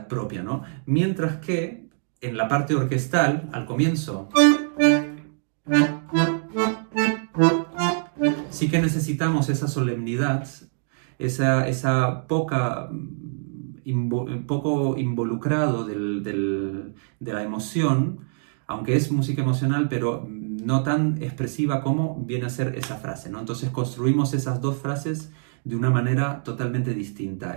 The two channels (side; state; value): left; silent; digital silence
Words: propia, ¿no? Mientras que en la parte orquestal, al comienzo, sí que necesitamos esa solemnidad, esa poco involucrado de la emoción, aunque es música emocional, pero no tan expresiva como viene a ser esa frase, ¿no? Entonces construimos esas dos frases de una manera totalmente distinta.